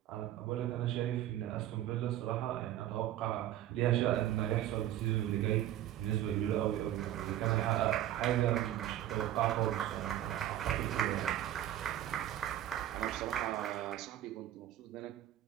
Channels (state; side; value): quieter; left; 12.6 dB